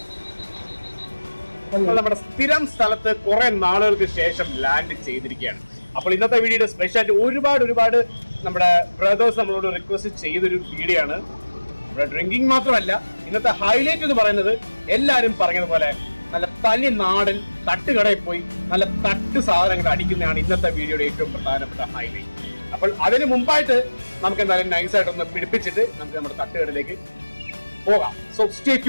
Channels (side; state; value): both; inverted; correlation -1.00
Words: നമ്മുടെ സ്ഥിരം സ്ഥലത്ത് കുറെ നാളുകൾക്ക് ശേഷം ലാൻഡ് ചെയ്തിരിക്കുകയാണ്. അപ്പോൾ ഇന്നത്തെ വീഡിയോയുടെ സ്പെഷ്യാലിറ്റി ഒരുപാട് നമ്മുടെ ബ്രദേഴ്സ് നമ്മളോട് റിക്വസ്റ്റ് ചെയ്തൊരു വീഡിയോ ആണ്. ഇവിടെ ഡ്രിങ്കിങ് മാത്രമല്ല, ഇന്നത്തെ ഹൈലൈറ്റ് എന്ന് പറയുന്നത് എല്ലാവരും പറഞ്ഞതുപോലെ നല്ല തനി നാടൻ തട്ടുകടയിൽ പോയി നല്ല തട്ട് സാധനങ്ങൾ അടിക്കുന്നതാണ് ഇന്നത്തെ വീഡിയോയുടെ ഏറ്റവും പ്രധാനപ്പെട്ട ഹൈലൈറ്റ്. അപ്പോൾ അതിന് മുമ്പായിട്ട് നമുക്ക് എന്തായാലും നൈസായിട്ടൊന്ന് പിടിപ്പിച്ചിട്ട് നമുക്ക് നമ്മുടെ തട്ടുകടയിലേക്ക് പോകാം. So stay